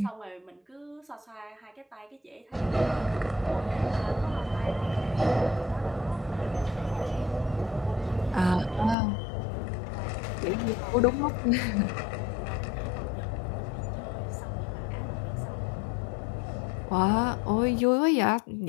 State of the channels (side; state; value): right; drops out; at 9.0 s